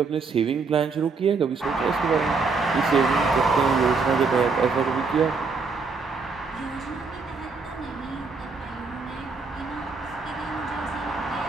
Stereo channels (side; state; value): left; quieter; 4.5 dB